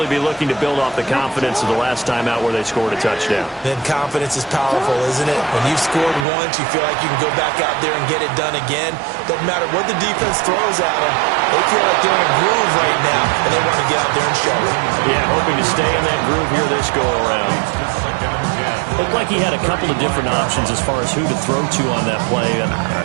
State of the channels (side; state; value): left; drops out; at 6.2 s